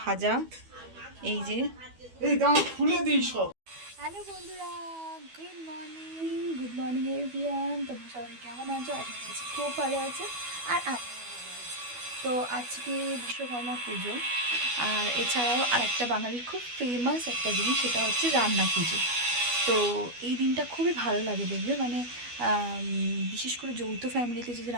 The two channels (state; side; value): late; left; 12 ms